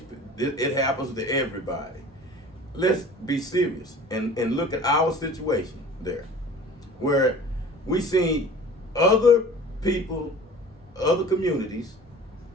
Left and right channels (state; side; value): normal; both; correlation 0.43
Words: happens to everybody. Let's be serious and look at our situation there, where we see other people, other communities